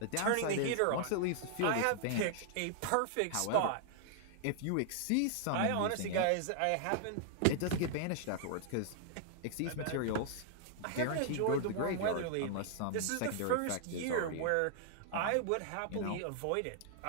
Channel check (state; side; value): different; both; correlation 0.00